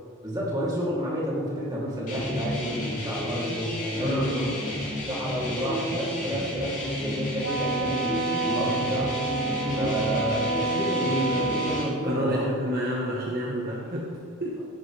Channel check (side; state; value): both; normal; correlation 0.36